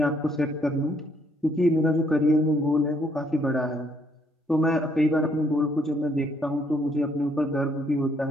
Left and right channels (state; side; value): normal; both; correlation 0.69